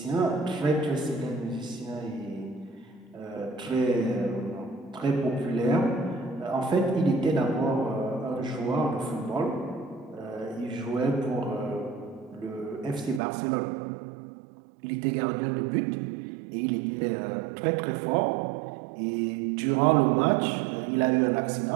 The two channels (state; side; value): drops out; left; at 13.2 s